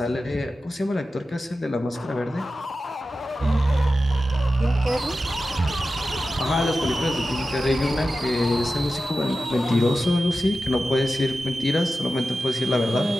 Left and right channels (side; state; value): both; normal; correlation 0.93